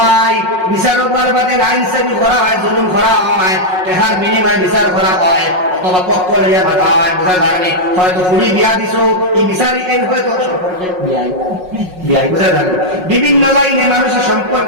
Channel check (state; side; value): late; left; 5.5 ms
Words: বিচারক বাদে আইন সেবি করা হয়, জুলুম করা হয়, টাকার বিনিময়ে বিচার করা হয়, অথবা পক্ষ লইয়া ভাতা হয়, বোঝা যায়নি। হয়তো ফুড়ি বিয়া দিছো, এই বিচারি এই হয়তো সম্পর্কে বিয়াই, বোঝা যায়। বিভিন্ন লাইনে মানুষের